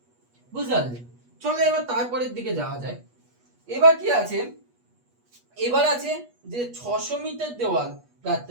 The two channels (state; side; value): late; left; 8.3 ms